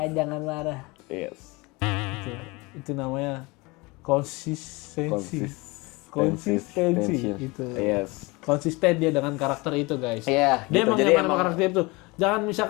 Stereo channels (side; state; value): right; quieter; 25.0 dB